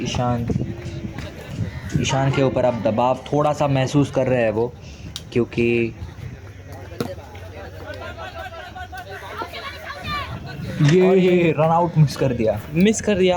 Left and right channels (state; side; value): identical; both; correlation 1.00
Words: ईशान के ऊपर अब दबाव थोड़ा सा महसूस कर रहे हैं वो, क्योंकि ये रन आउट मिस कर